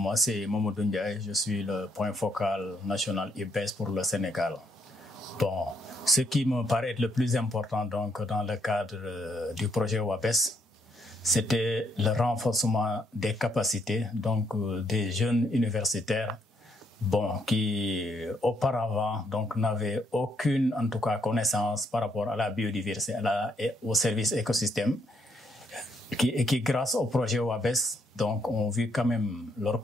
c'est Mamadou Ndiaye. Je suis le point focal national IBES pour le Sénégal. Bon, ce qui me paraît être le plus important donc, dans le cadre du projet WABES, c'était le renforcement des capacités donc, des jeunes universitaires qui auparavant n'avaient aucune en tout cas, connaissance par rapport à la biodiversité et au service écosystème. Qui grâce au projet WABES, donc, ont vu quand même leurs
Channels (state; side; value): normal; both; correlation 0.73